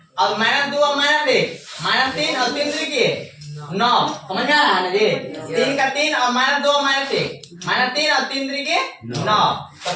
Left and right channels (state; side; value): identical; both; correlation 1.00